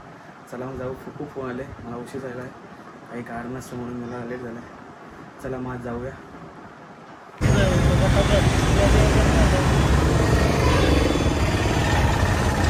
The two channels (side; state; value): both; identical; correlation 1.00